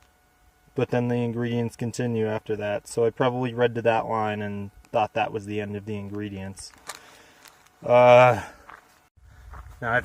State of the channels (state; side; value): identical; both; correlation 1.00